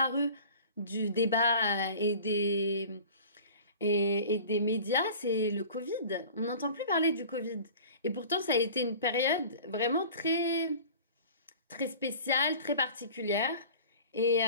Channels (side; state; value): both; inverted; correlation -0.42